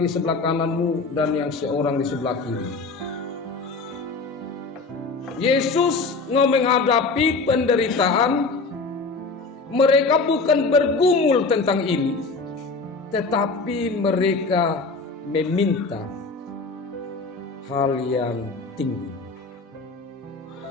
di sebelah kanan-Mu dan yang seorang di sebelah kiri." Yesus menghadapi penderitaan, mereka bukan bergumul tentang ini, tetapi mereka meminta hal yang tinggi.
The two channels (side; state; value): right; quieter; 4.0 dB